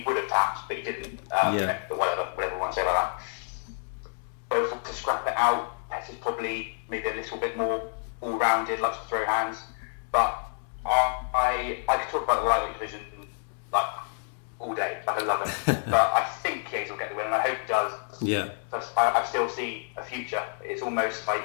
would have tapped, but he didn't. But whatever we want to say about that. Both to scrap it out. Pettis probably maybe a little bit more all-rounded, likes to throw hands. But I could talk about the lightweight division like all day, like I love it. But I think Chiesa will get the win, and I hope he does. Yeah. I still see a future. It's almost like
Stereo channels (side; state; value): right; silent; 59 dB below the other